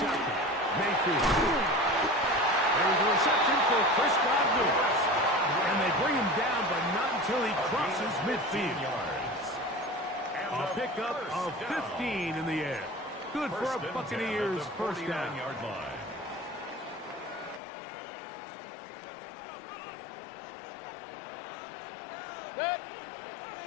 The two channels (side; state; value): right; drops out; at 17.6 s